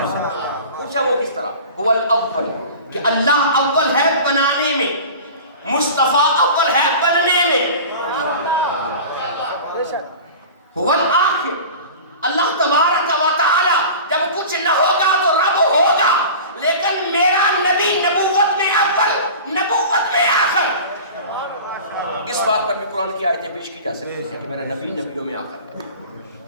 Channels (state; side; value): inverted; both; correlation -0.36